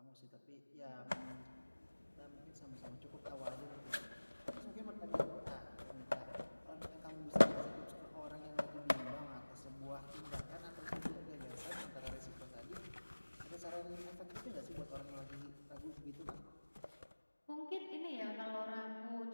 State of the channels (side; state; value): both; inverted; correlation -1.00